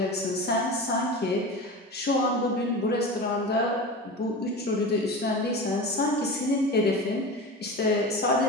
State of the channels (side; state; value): both; normal; correlation 0.29